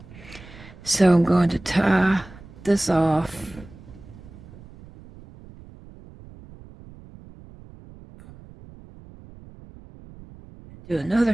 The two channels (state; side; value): noise; right; rumble, 20 dB below the sound